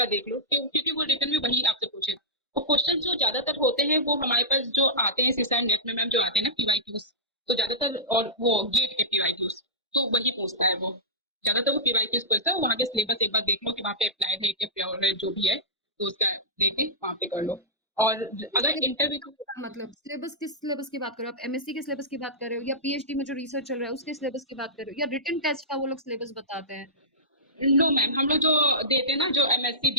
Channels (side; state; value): both; normal; correlation -0.16